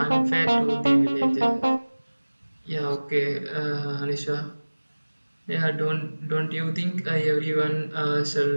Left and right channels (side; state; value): both; inverted; correlation -1.00